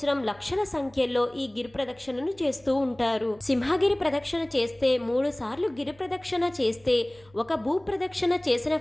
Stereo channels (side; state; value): right; noise; hum, 28 dB below the sound